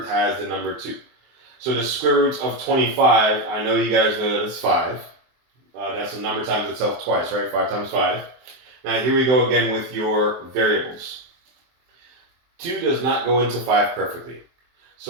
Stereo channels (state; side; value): late; left; 23 ms